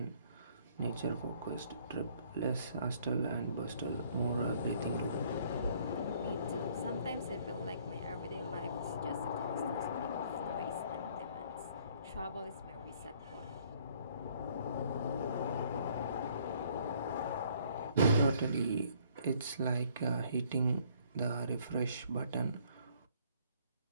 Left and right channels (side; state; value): both; inverted; correlation -0.62